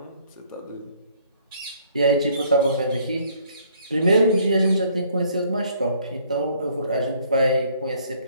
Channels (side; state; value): both; inverted; correlation -0.62